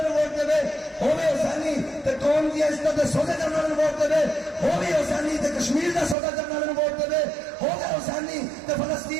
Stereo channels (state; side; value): drops out; left; at 6.2 s